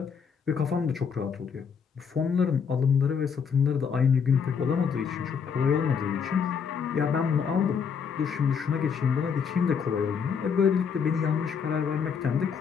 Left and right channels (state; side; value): quieter; right; 6.5 dB